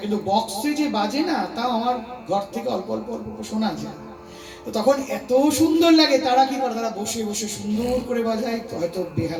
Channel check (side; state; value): both; identical; correlation 1.00